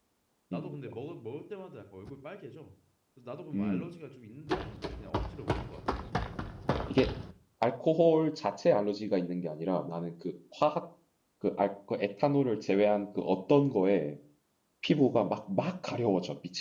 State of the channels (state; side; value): identical; both; correlation 1.00